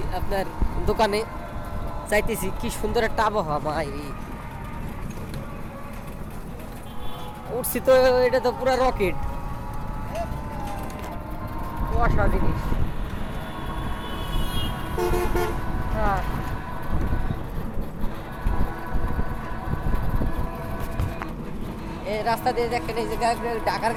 আপনার দোকানে, চাইতেছি কি সুন্দর একটা আবহাওয়া মাইরি উঠছি তো, এটা তো পুরো রকেট কুয়াশা জিনিস। হ্যাঁ এই রাস্তা দিয়ে দেখেন, এই যে ঢাকার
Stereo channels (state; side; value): identical; both; correlation 1.00